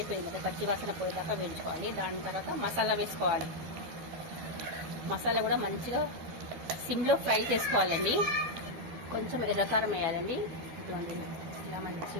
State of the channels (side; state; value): left; late; 12 ms